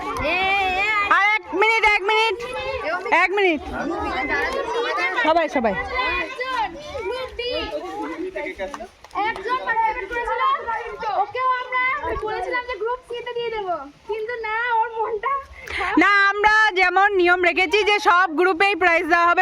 আর 1 মিনিট 1 মিনিট 1 মিনিট, সবাই সবাই। একজন পার্টিসিপেট করেছিল, ওকেও আমরা বলেছিলাম যে গ্রুপ সি তে দিয়ে দেব, কিন্তু না, ওর মনটা না, আমরা যেমন নিয়ম রেখেছি যে সব গ্রুপেই প্রাইজ দেওয়া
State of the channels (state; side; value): identical; both; correlation 1.00